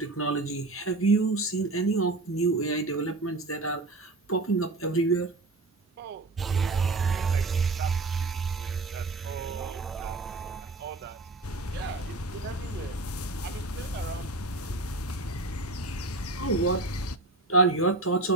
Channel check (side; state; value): left; quieter; 3.2 dB